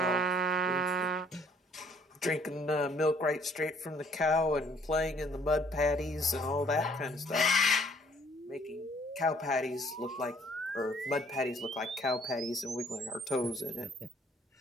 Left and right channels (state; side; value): normal; both; correlation 0.61